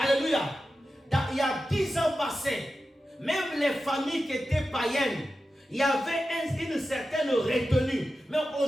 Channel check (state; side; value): normal; both; correlation 0.92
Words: Il y a 10 ans passés, même les familles qui étaient païennes, il y avait une certaine retenue. Mais